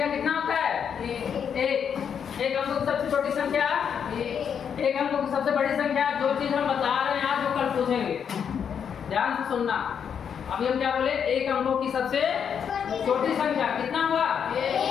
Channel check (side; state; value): right; quieter; 7.6 dB